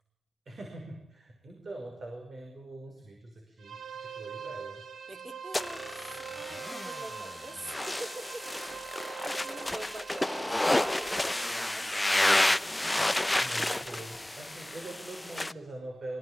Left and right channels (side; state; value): both; normal; correlation 0.98